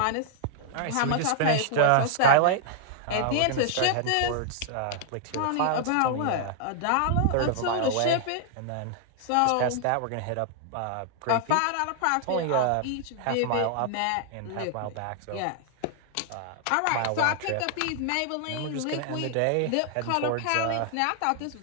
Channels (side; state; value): both; different; correlation 0.00